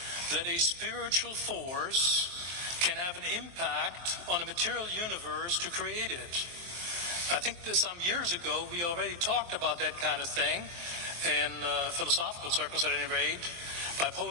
that a spiritual force can have an impact on a material universe to create it. I think that some years ago we already talked about that kind of thing in philosophical circles at any rate, by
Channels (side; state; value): left; late; 23 ms